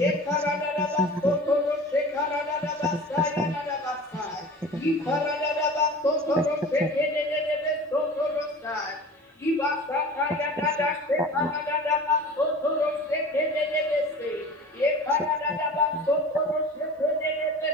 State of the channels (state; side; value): normal; both; correlation 0.39